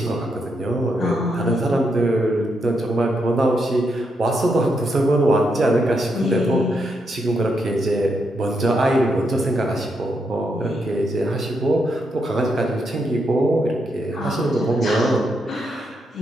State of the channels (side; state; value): both; normal; correlation 0.80